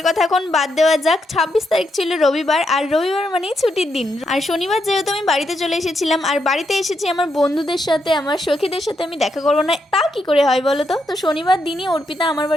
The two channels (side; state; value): both; normal; correlation 0.81